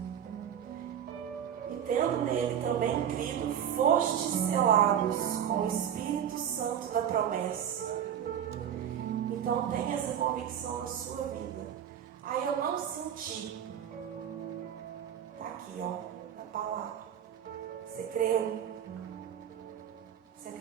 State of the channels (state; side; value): quieter; left; 9.4 dB